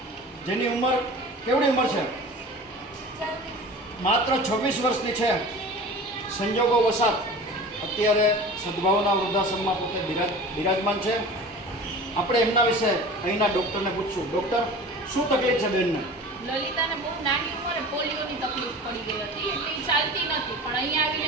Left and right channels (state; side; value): normal; both; correlation 0.38